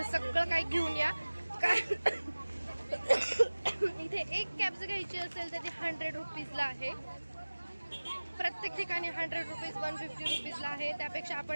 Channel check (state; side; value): inverted; both; correlation -1.00